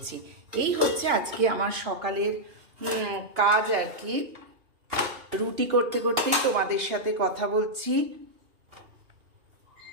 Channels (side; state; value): left; late; 2.8 ms